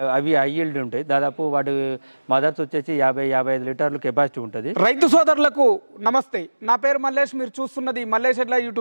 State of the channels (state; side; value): inverted; both; correlation -1.00